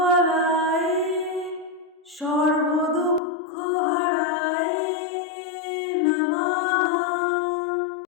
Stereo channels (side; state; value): right; drops out; at 3.2 s